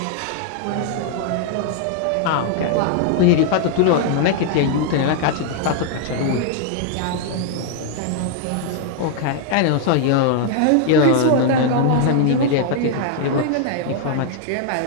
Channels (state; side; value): different; both; correlation 0.00